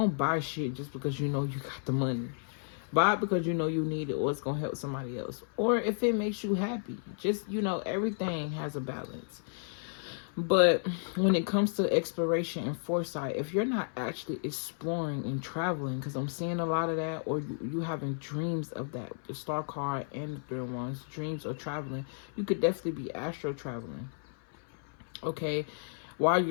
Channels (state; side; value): silent; right; 56 dB below the other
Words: buy shit just because you know you got the money. Buy it because you know you need it, or it's gonna help somebody else, or if it makes you happy. Just, you know, everything has a balance. But when it comes to exploration and foresight, if you're not actually exploring and traveling, because I'm seeing a lot of that, or you having dreams of that, the star card and the third ones, dreams of traveling, you could definitely be astro traveling. Okay, while